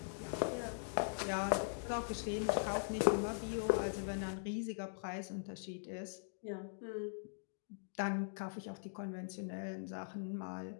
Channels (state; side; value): silent; right; digital silence